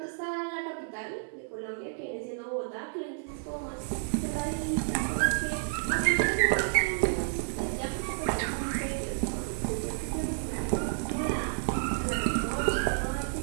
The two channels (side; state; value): left; silent; digital silence